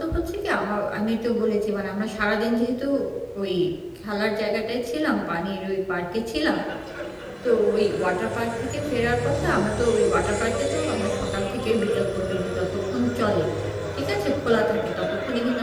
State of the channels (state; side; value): identical; both; correlation 1.00